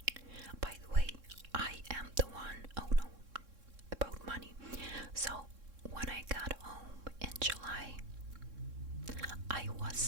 by the way, I am the one, oh no, about money. So when I got home in July, I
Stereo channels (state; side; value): late; left; 3.6 ms